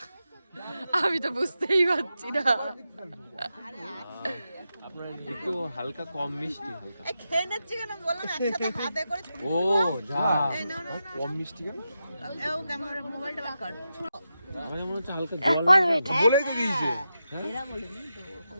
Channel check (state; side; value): inverted; both; correlation -0.88